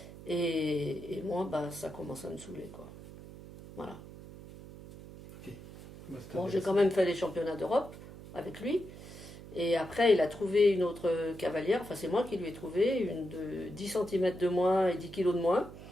Et moi, ça commence à me saouler, quoi. Voilà. Ok. Bah, c'est Bon, j'ai quand intéressant. même fait les championnats d'Europe avec lui. Et après, il a trouvé une autre cavalière. Enfin, c'est moi qui lui ai trouvé une de 10 centimètres de moins et 10 kilos de moins.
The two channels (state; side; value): noise; right; hum, 15 dB below the sound